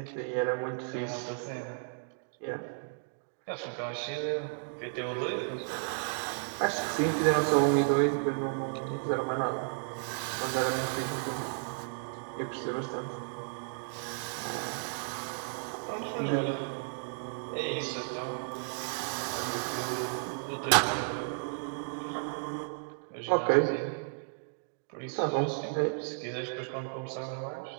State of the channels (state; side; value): silent; left; digital silence